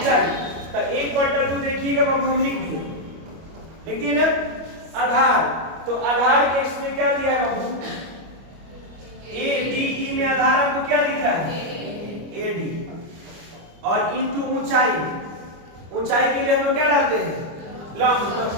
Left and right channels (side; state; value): left; late; 25 ms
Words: तो 1/2 देखिएगा बाबू हम लिख दिए ना आधार। तो आधार के इसमें क्या दिया है बाबू? ए डी ई में आधार आपको क्या दिख रहा है? A D. और इनटू ऊंचाई। ऊंचाई के लिए हम लोग क्या डालते हैं? लंब।